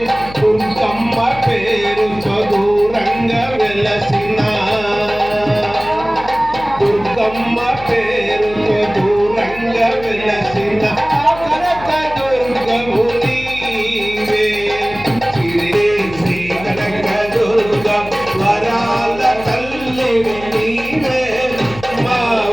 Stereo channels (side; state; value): left; noise; hum, 15 dB below the sound